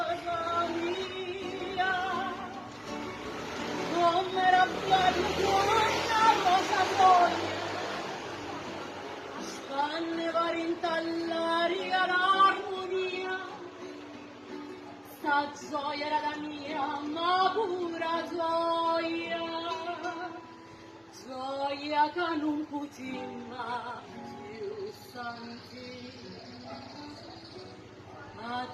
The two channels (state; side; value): identical; both; correlation 1.00